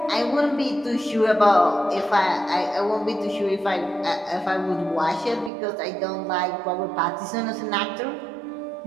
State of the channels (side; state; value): left; drops out; at 5.5 s